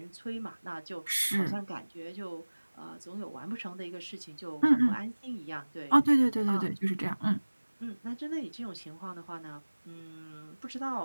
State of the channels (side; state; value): both; inverted; correlation -1.00